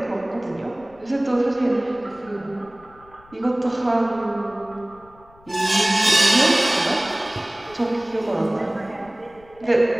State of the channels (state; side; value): noise; left; rumble, 26 dB below the sound